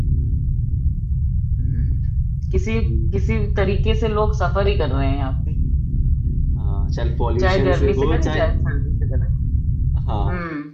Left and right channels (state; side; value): identical; both; correlation 1.00